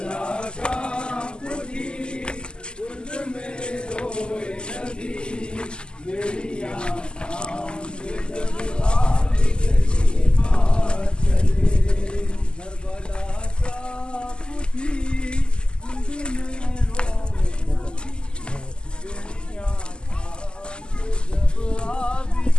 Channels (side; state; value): right; late; 0.048 ms